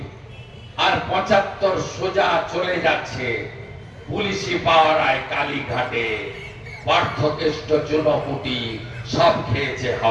আর 75 সোজা চলে যাচ্ছে পুলিশি পাওয়ারায় কালীঘাটে পার্থকেষ্ট চুনপুটি সব খেয়েছে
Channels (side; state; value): both; identical; correlation 1.00